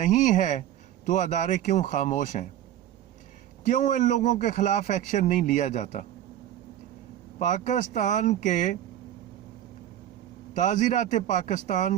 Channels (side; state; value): left; quieter; 11.7 dB